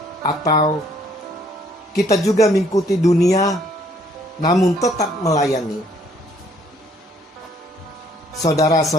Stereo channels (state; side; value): normal; both; correlation 0.64